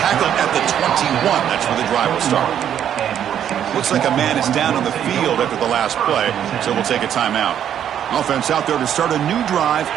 at the 21. That's where the drive will start. Looks like a man is down on the field after the last play, so we'll take a timeout. Offense out there to start a new drive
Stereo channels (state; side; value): quieter; left; 9.7 dB